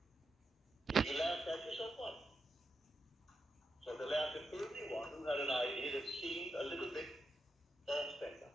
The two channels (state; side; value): normal; both; correlation 0.86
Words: If you laugh at yourself, what? So the laugh at everyone who had an idea that seemed a little bit off-center.